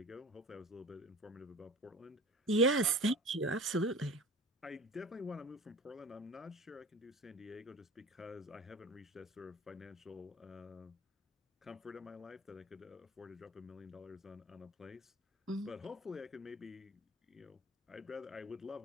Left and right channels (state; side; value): normal; both; correlation 0.38